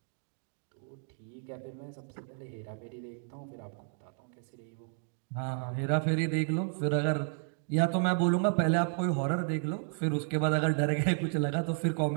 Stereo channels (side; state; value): left; silent; 56 dB below the other